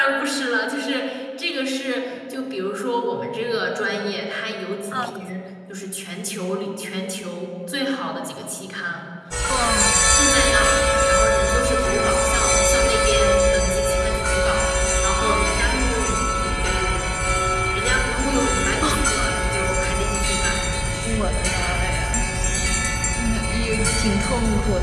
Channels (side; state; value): both; identical; correlation 1.00